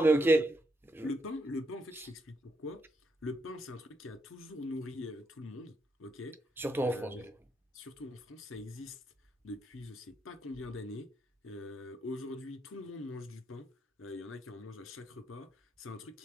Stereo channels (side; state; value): both; normal; correlation 0.79